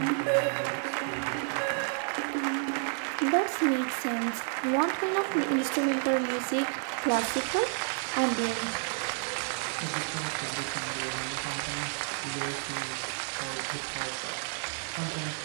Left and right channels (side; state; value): left; silent; 57 dB below the other